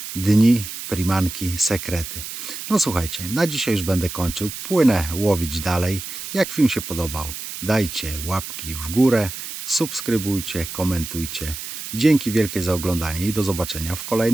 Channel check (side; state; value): right; noise; hiss, 8 dB below the sound